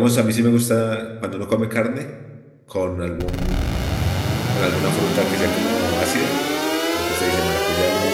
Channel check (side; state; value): both; identical; correlation 1.00